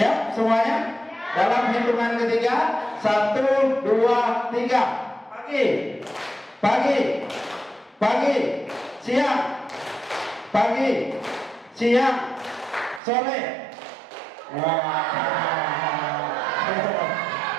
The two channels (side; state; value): left; drops out; at 13.0 s